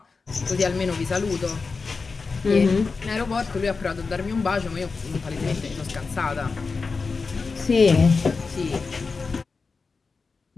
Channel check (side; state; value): right; quieter; 4.5 dB